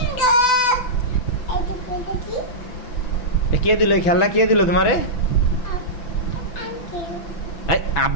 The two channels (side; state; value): right; late; 6.0 ms